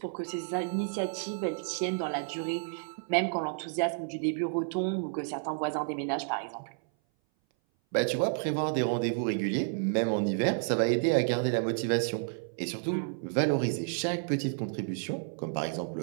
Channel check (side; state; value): left; silent; 57 dB below the other